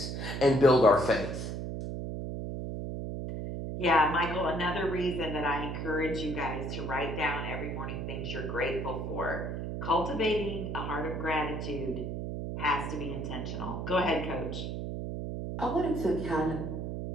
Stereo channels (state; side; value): noise; right; hum, 4 dB below the sound